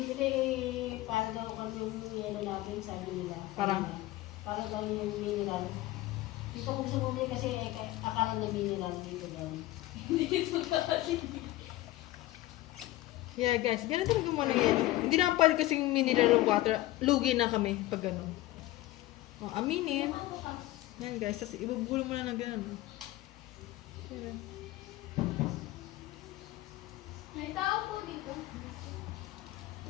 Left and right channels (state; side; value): quieter; right; 16.9 dB